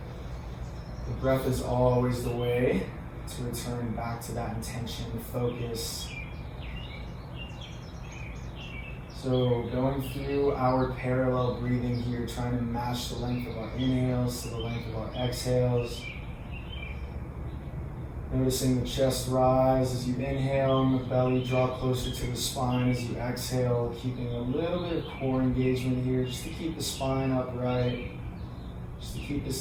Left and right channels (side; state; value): both; identical; correlation 1.00